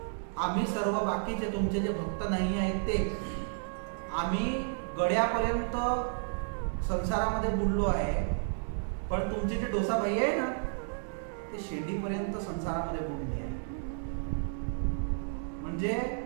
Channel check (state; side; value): silent; left; digital silence